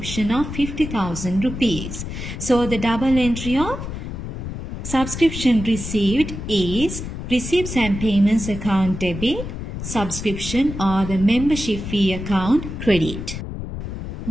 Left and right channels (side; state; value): left; noise; rumble, 7 dB below the sound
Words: of 50,000 rupees. So the double entry of subscription received is receipts and payments account debit, subscription or the membership fee account credit.